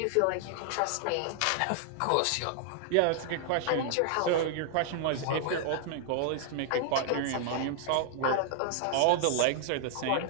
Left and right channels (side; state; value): both; different; correlation 0.00